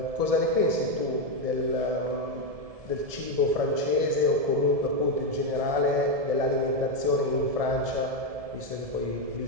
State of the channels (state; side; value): late; left; 1.7 ms